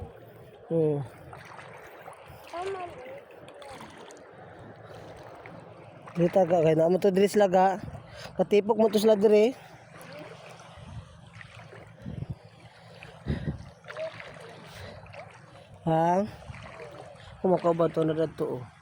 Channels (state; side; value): identical; both; correlation 1.00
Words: Tama na. Dito ka kay naman to diri sila ga. Katipok mo to sila diri. Ha? Kumakaw ba to na dito oh.